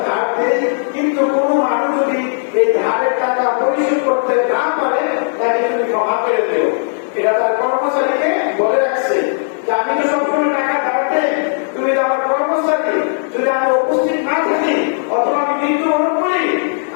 ধার দিই, কিন্তু কোন মানুষ যদি এই ধারের টাকা পরিশোধ করতে না পারে তাকে তুমি ক্ষমা করে দিও। এটা তার কর্মচারীকে বলে রাখছে যে আমি তো সবসময় টাকা ধার দেই, তুমি তো আমার কর্মচারী, যদি আমি উপস্থিত না থাকি অথবা আমি মৃত্যুবরণ করি,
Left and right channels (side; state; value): right; silent; digital silence